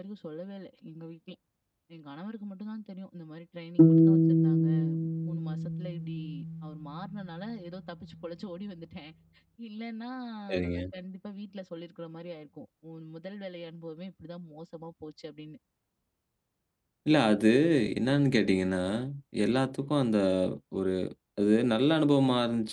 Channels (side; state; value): both; identical; correlation 1.00